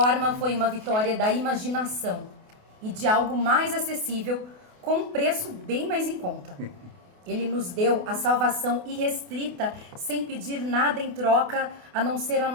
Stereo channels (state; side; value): late; left; 28 ms